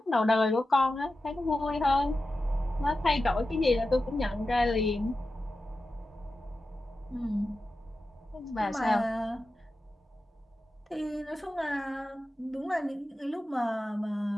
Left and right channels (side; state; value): both; normal; correlation 0.92